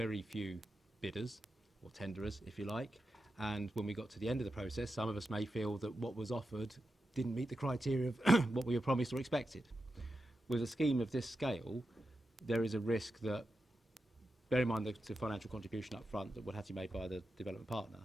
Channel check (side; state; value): both; normal; correlation 0.90